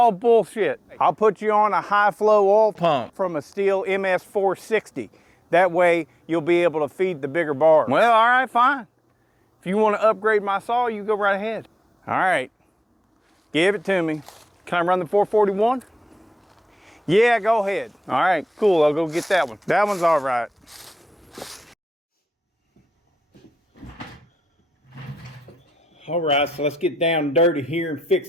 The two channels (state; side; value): normal; both; correlation 0.92